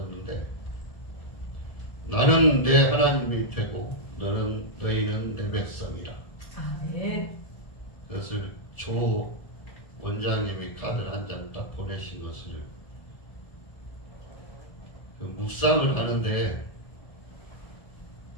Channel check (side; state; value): right; late; 1.7 ms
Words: 나는 내 하나님이 되고 너희는 내 백성이라. 아멘. 그것을 조 원장님이 카드를 한 장 딱 보내신 것을 묵상을 하는데,